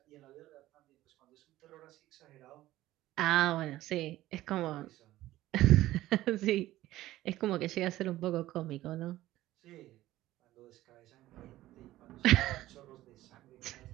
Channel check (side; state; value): left; quieter; 15.5 dB